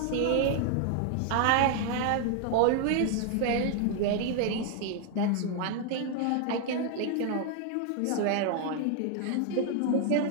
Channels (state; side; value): different; both; correlation 0.00